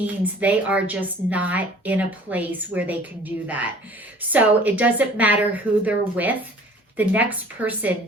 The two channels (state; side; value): normal; both; correlation 0.50